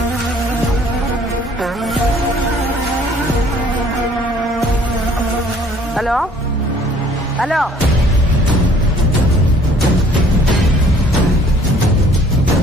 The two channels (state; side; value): normal; both; correlation 0.57